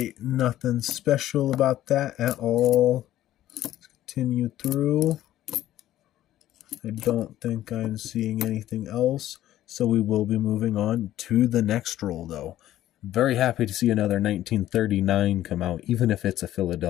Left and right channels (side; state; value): right; quieter; 13.5 dB